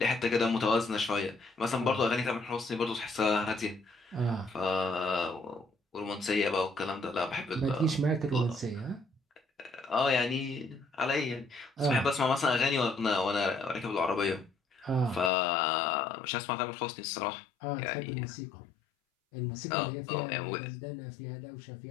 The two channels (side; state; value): right; drops out; at 15.3 s